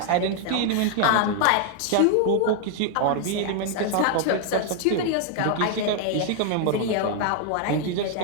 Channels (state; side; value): different; both; correlation 0.00